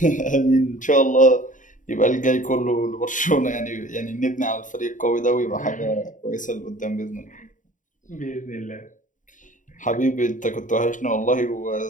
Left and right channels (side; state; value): right; late; 0.37 ms